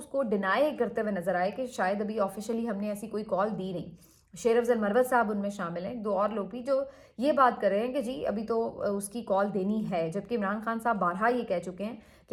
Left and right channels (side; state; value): both; identical; correlation 1.00